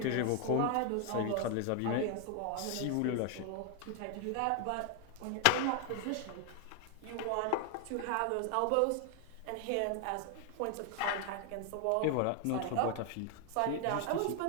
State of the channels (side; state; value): both; different; correlation 0.00